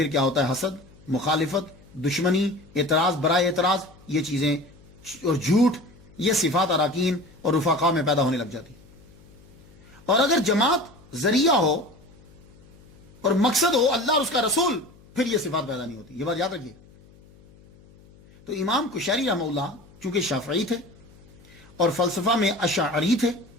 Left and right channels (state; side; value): noise; left; hum, 25 dB below the sound